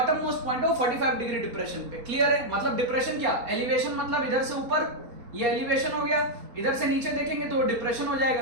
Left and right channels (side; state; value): left; late; 4.2 ms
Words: मोस्ट पॉइंट है वो 45 डिग्री डिप्रेशन पे। क्लियर है? मतलब डिप्रेशन क्या, एलिवेशन मतलब इधर से ऊपर ये एलिवेशन हो गया, इधर से नीचे देखेंगे तो डिप्रेशन हो